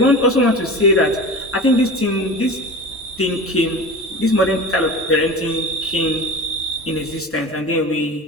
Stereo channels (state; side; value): normal; both; correlation 0.33